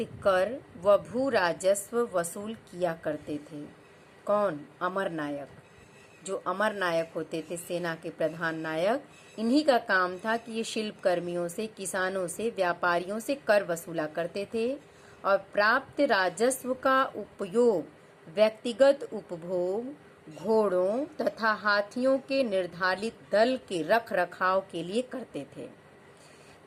कर व भू राजस्व वसूल किया करते थे। कौन? अमरनायक। जो अमरनायक होते थे, सेना के प्रधान नायक, इन्हीं का काम था कि ये शिल्पकर्मियों से, किसानों से, व्यापारियों से कर वसूला करते थे, और प्राप्त राजस्व का उपयोग व्यक्तिगत उपभोग, घोड़ों तथा हाथियों के निर्धारित दल के रख रखाव के लिए करते थे।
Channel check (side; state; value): both; identical; correlation 1.00